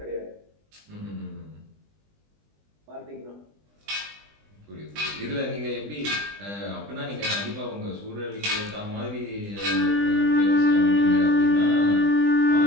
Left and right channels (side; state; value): left; late; 20 ms